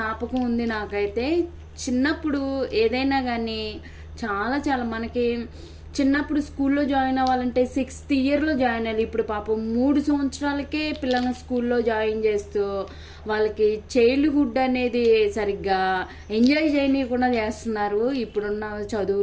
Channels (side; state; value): both; identical; correlation 1.00